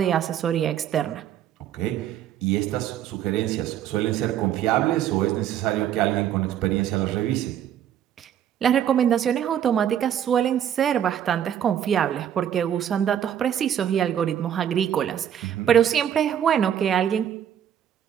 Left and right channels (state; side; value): quieter; left; 10.0 dB